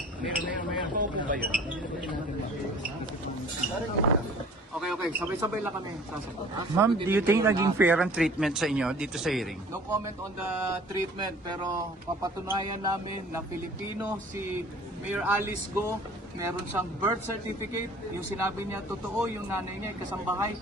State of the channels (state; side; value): normal; both; correlation 0.49